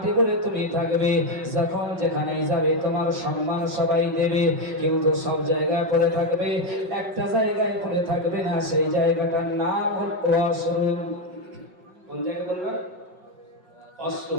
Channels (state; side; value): late; left; 5.5 ms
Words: পরে তুমি থাকবে, যখন যেখানে যাবে তোমার সম্মান সবাই দেবে, কিন্তু সব জায়গায় পরে থাকবে, একটা জায়গায় পরে থাকবে না, সেই জায়গাটার নাম হল ওয়াশরুম। কোন জায়গা বলবেন?